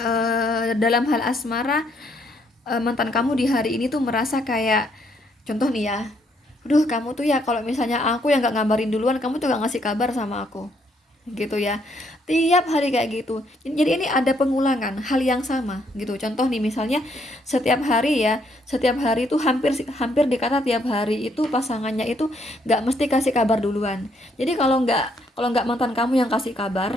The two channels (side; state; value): both; normal; correlation 0.71